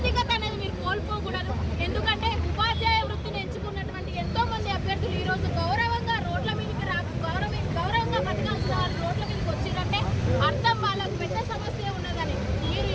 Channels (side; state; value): both; identical; correlation 1.00